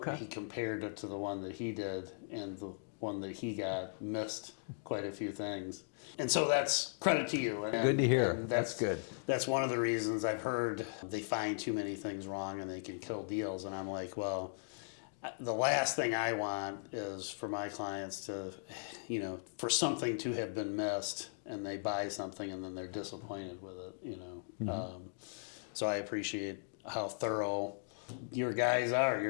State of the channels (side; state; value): right; silent; digital silence